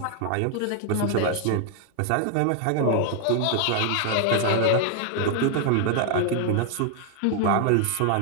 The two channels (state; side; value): different; both; correlation 0.00